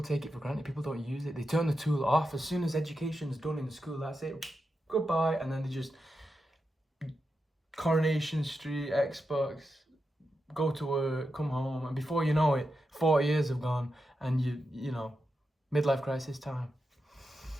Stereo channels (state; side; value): normal; both; correlation 0.88